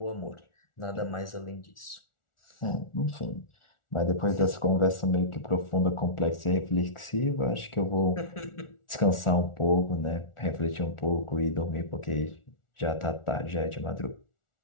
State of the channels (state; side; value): late; right; 1.4 ms